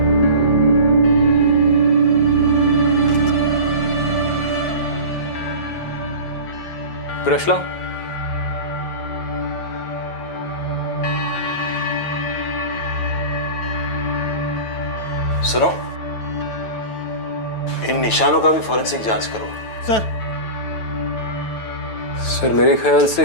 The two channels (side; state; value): right; late; 9.1 ms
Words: ब्रश लाओ। सुनो, इन निशानों का भी फॉरेंसिक जांच करो। सर मेरे ख्याल से